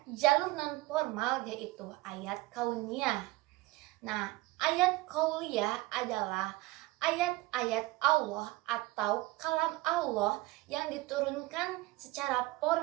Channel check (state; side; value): quieter; left; 20.4 dB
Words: jalur non formal, yaitu ayat kauniyah. Nah, ayat qauliyah adalah ayat-ayat Allah atau kalam Allah yang diturunkan secara